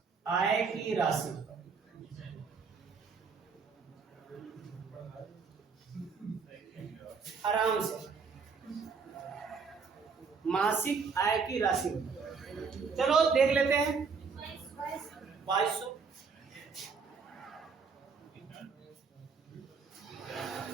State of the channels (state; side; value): quieter; left; 5.3 dB